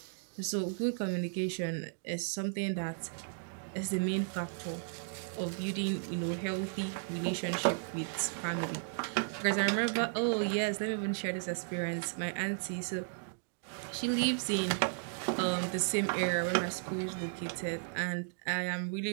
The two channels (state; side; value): silent; left; digital silence